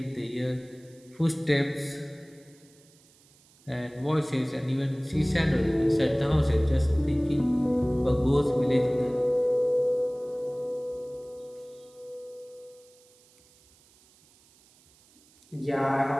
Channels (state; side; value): noise; right; hiss, 29 dB below the sound